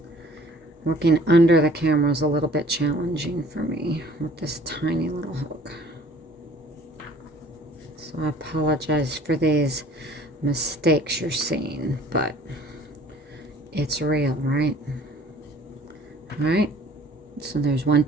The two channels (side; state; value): both; normal; correlation 0.53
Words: Working under the camera is a little bit challenging for me with this tiny little hook. So I apologize for these mistakes you're seeing, but it's real, right? All right. So there's 1,